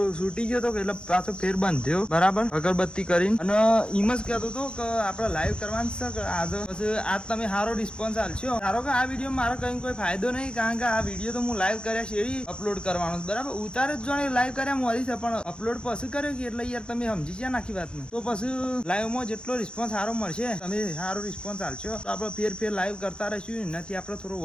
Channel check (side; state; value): right; late; 0.052 ms